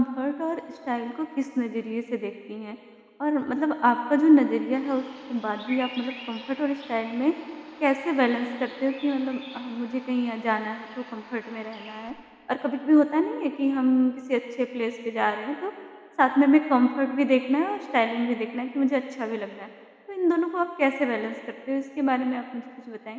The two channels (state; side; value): identical; both; correlation 1.00